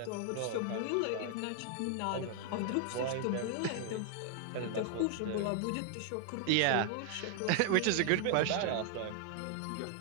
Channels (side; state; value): both; different; correlation 0.00